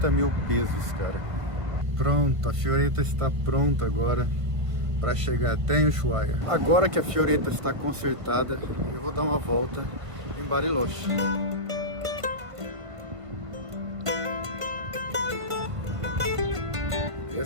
mil pesos, cara. Pronto, a Fioretta está pronta agora para chegar até em Ushuaia. Agora que a Fioretta está consertada, eu vou dar uma volta em Bariloche.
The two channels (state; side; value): late; left; 1.5 ms